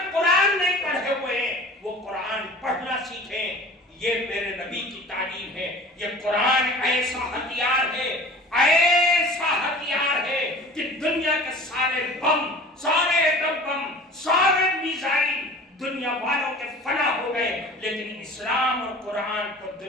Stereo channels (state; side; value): normal; both; correlation 0.42